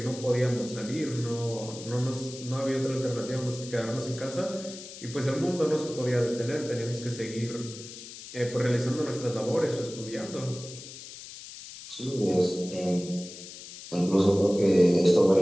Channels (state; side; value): noise; left; hiss, 14 dB below the sound